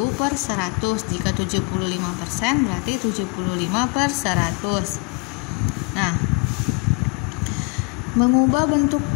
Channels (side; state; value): right; quieter; 31.4 dB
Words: per 100. Jika 75% berarti 75 per 100. Nah, mengubah bentuk